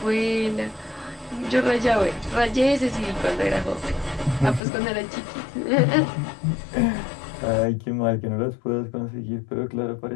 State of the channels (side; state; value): right; drops out; at 4.6 s